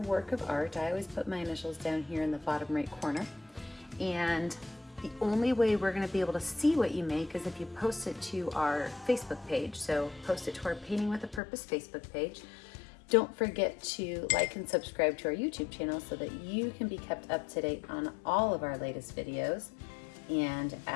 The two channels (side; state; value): right; drops out; at 11.4 s